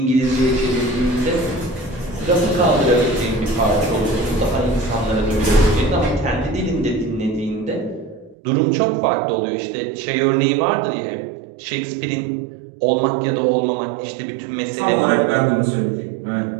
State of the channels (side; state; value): left; drops out; at 8.3 s